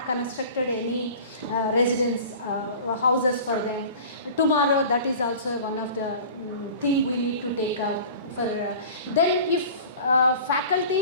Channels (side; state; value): both; inverted; correlation -0.40